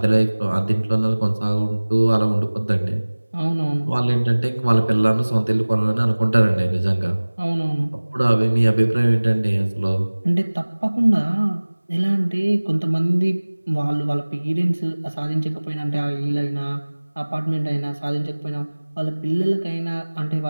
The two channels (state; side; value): inverted; both; correlation -1.00